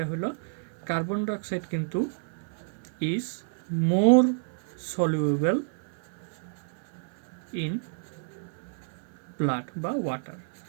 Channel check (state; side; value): silent; left; 57 dB below the other